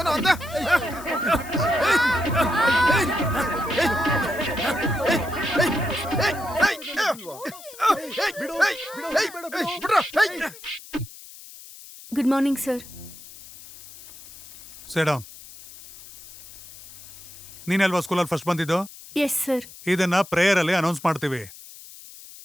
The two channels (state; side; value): noise; left; hiss, 17 dB below the sound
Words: ಅಂದ? Good morning sir. Sit down. ನೀನಲ್ವಾ ಸ್ಕೂಲಲ್ಲಿ ಫಸ್ಟ್ ಬಂದಿದ್ದು? Yes sir. ಇದನ್ನ ಪ್ರೇಯರ್ ಅಲ್ಲಿ ಅನೌನ್ಸ್ ಮಾಡ್ತೀವಿ.